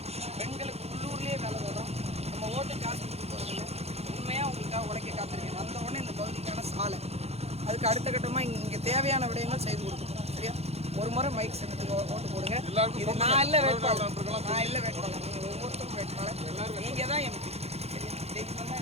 பெண்களுக்கு உள்ளூர்லேயே வேலை தர்றோம். நம்ம ஓட்டு காசு கொடுத்து போகிறதில்ல, உண்மையாக உங்களுக்காக உழைக்க காத்திருக்கேன். வந்த உடனே இந்த பகுதிக்கான சாலை, அதுக்கு அடுத்த கட்டமாக இங்கே தேவையான விடயங்கள் செய்து கொடுக்கணும். சரியா? ஒரு முறை மைக் சின்னத்துக்கு ஓட்டு போடுங்க. இது நான் இல்லை வேட்பாளர், நீங்கள் ஒவ்வொருத்தரும் வேட்பாளர், நீங்கள் தான் எம்பி. சரியா?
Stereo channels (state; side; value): late; left; 0.30 ms